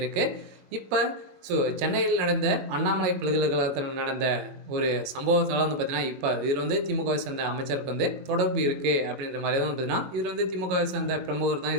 இப்போ சென்னையில் நடந்த அண்ணாமலை பல்கலைக்கழகத்தில் நடந்த ஒரு சம்பவத்தால் பார்த்தீங்கன்னா, இப்போ இதில் திமுகவை சேர்ந்த அமைச்சருக்கு தொடர்பு இருக்குது அப்படின்ற மாதிரி தான் பார்த்தீங்கன்னா, இதில் திமுகவை சேர்ந்த பிரமுகர் தான்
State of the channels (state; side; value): late; left; 21 ms